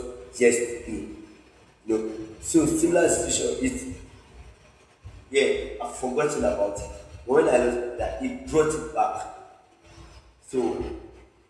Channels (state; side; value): identical; both; correlation 1.00